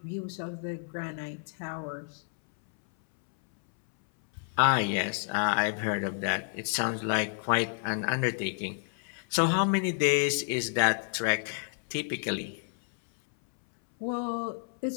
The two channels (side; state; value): right; silent; 58 dB below the other